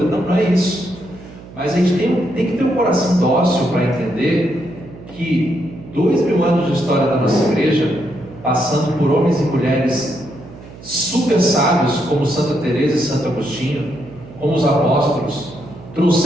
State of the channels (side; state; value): right; noise; hum, 18 dB below the sound